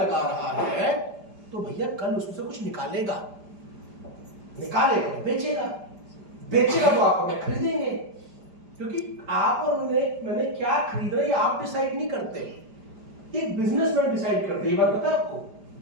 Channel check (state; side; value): late; left; 5.0 ms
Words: रहा है, तो भैया कल उससे कुछ निकालेगा तो बेचेगा तो आप हमें खरीदेंगे। क्योंकि आप और मैंने क्या खरीद रहे हैं आप डिसाइड नहीं करते, एक बिजनेसमैन डिसाइड करते हैं। ये बात पता है आपको?